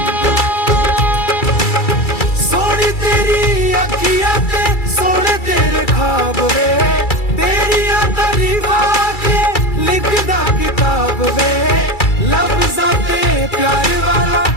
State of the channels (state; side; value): late; right; 2.3 ms